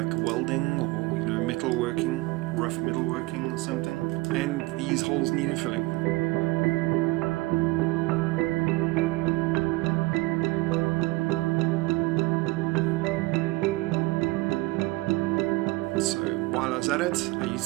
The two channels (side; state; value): left; quieter; 21.6 dB